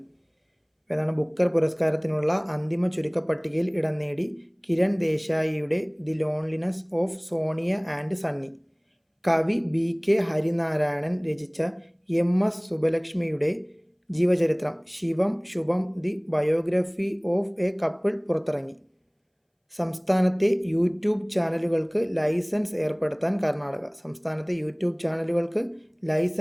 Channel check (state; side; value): identical; both; correlation 1.00